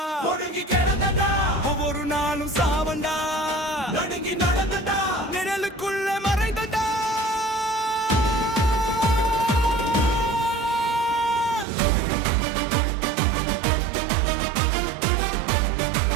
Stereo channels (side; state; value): left; drops out; at 11.7 s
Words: ஒடுங்கி கிடந்தண்டா, ஒவ்வொரு நாளும் சாவண்டா, நடுங்கி நடந்தண்டா, நிழலுக்குள்ள மறைந்தண்டா.